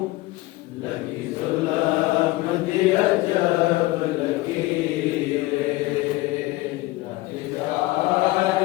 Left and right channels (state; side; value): quieter; right; 19.8 dB